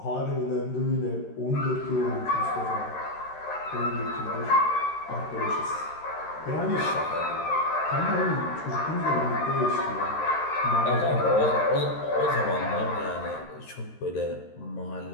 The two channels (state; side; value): late; right; 13 ms